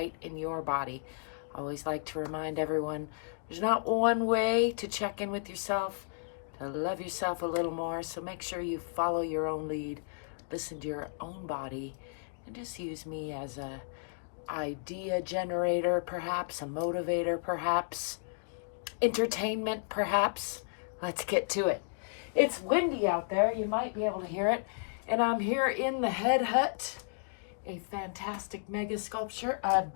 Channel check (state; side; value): silent; right; digital silence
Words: in your body. I always like to remind everyone there's not one way to check in with yourself, to love yourself a little more, so make sure you follow your own lead. Listen to your own body and just use me as a idea generator, perhaps a motivator, perhaps entertainment, perhaps. Let's get to it. It's windy out there. You might be able to hear it. And I'm here in the Head Hutt, a fantastic mega sculpture I